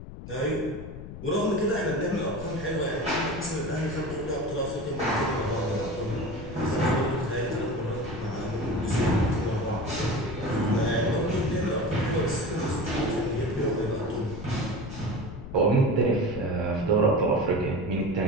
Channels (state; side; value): noise; left; rumble, 11 dB below the sound